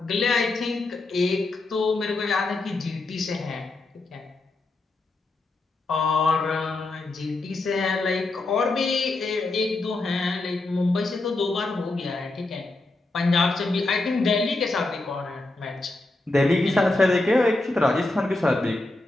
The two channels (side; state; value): right; quieter; 3.0 dB